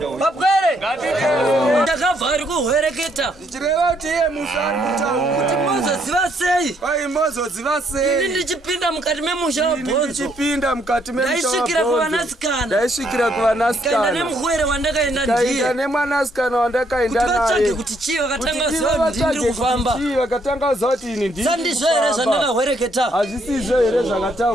Bapwere! Ndakabva ari kuhwereketa. Ndichireva kuti iye musi ari kutaura. Kuti mozoziva sei? Kwai mozoziva sei? Ini ndichipinda mukati memusha waBonzo. Ndichipinda mukati memusha waBonzo. Ndaisvikira kuvanasikana. Ndaisvikira kuvanasikana. Kaenda nemuhwere wandakaenda ndiye. Kaenda nemwanasikana wandakaenda naye. Kuti vatsvage kuti chii vakatanga kuziva kuti ndiri kufamba. Chii vakatanga kuziva kuti ini ndiri kufamba. Sandizvo here zvandakahwereketa. Hazvisizvo here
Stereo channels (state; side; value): normal; both; correlation 0.71